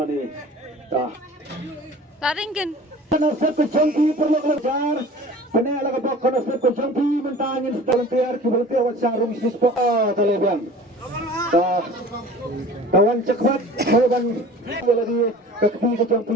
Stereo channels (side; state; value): both; normal; correlation 0.43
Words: dah Taringin. konsep kejangki perlu belajar benar lah keba konsep kejangki mentangin dalam tiar kiberti awak sarung bisnis po terlebih kawan cepat kawan lagi kekti kejampi